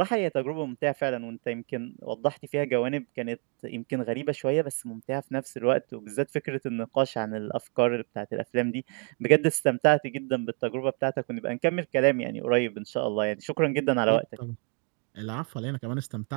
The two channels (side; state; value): left; quieter; 34.2 dB